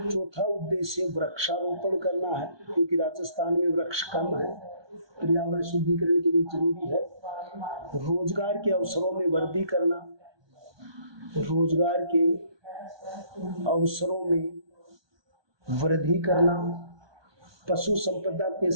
उद्देश्य वृक्षारोपण करना है, क्योंकि राजस्थान में वृक्ष कम है, पर्यावरण शुद्धिकरण के लिए जरूरी है। रोजगार के अवसरों में वृद्धि करना, रोजगार के अवसरों में वृद्धि करना, पशु संपदा के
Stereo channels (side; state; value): left; late; 1.2 ms